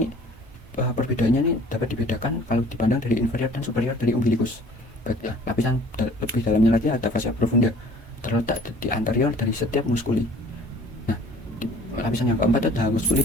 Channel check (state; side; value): normal; both; correlation 0.51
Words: perbedaannya ini dapat dibedakan kalau dipandang dari inferior dan superior dari umbilicus. Lapisan lebih dalamnya lagi ada fascia profunda, terletak di anterior dari setiap muskuli. Nah, lapisan yang keempat ada muskuli